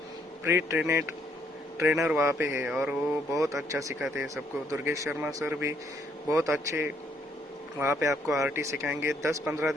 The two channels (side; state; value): both; normal; correlation 0.69